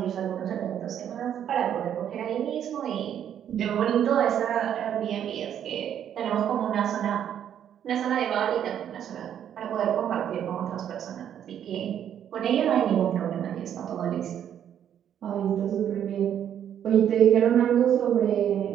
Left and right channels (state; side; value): quieter; left; 9.6 dB